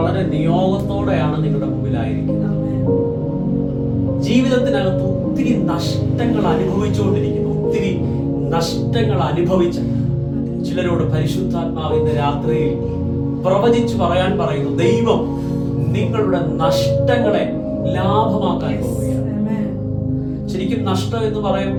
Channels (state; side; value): identical; both; correlation 1.00